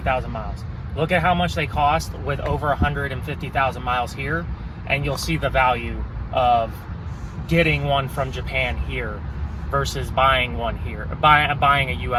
miles. Look at how much they cost with over 150,000 miles here, and you'll see the value of getting one from Japan here versus buying one here, buying a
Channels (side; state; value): both; identical; correlation 1.00